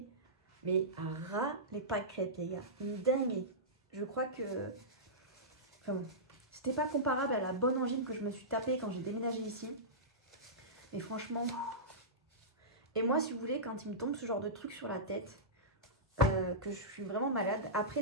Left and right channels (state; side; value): normal; both; correlation -0.17